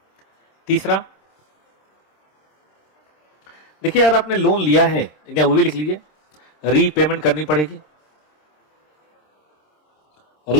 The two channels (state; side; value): late; right; 26 ms